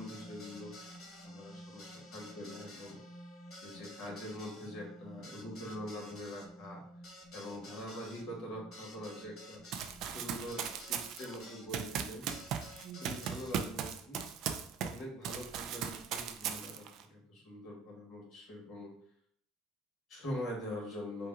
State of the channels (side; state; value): left; quieter; 3.2 dB